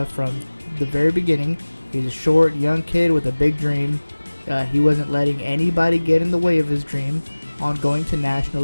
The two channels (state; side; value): inverted; both; correlation -1.00